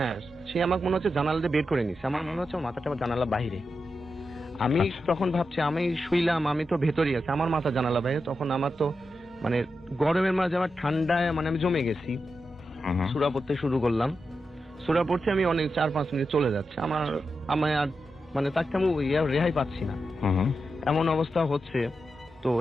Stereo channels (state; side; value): normal; both; correlation 0.88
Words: সে আমাকে মনে হচ্ছে জানালা দিয়ে বের করে নিচ্ছে। আমার মনে হচ্ছে আমার মাথাটা আমার জানালা বাইরে। আমি তখন ভাবছি আমি শুইলাম, আমি তো ভেতরেই আছি, আমার মাথা জানালা বাইরে। তখন আমার তো মানে গরমের মাঝে আমার ঠান্ডায় মানে আমি জমে গেছি। সূরা পড়তে শুরু করলাম, সূরা পড়ছি, আমি অনেক 4-5 মিনিট চলে যাচ্ছে, আমার আর মানে তাকে আমি রেহাই পাচ্ছি না, এমন অবস্থা হচ্ছে। তো